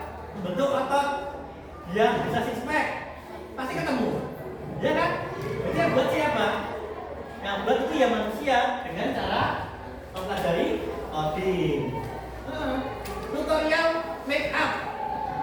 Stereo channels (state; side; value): identical; both; correlation 1.00